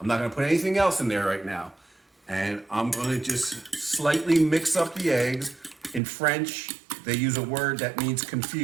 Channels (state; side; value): drops out; left; at 6.0 s